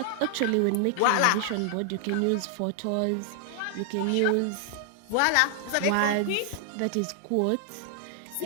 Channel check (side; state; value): both; different; correlation 0.00